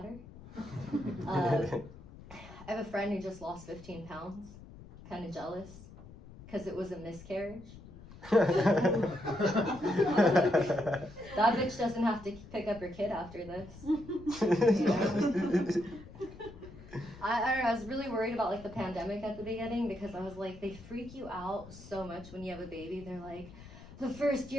her. I have a friend who just lost 15 pounds. Kind of jealous because it was a miscarriage. That bitch doesn't have to pick up her kid after this. You know? I don't know, I was really worried about like the pandemic at the beginning because I was like, they freak you out so much when you have a baby. They're like, the first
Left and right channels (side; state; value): left; noise; rumble, 17 dB below the sound